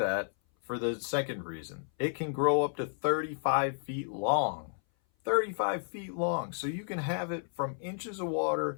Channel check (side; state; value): right; silent; 56 dB below the other